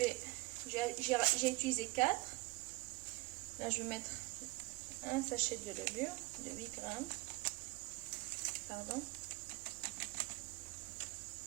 utilisé 4. Là, je vais mettre un sachet de levure de 8 grammes. Pardon.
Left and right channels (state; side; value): quieter; left; 23.8 dB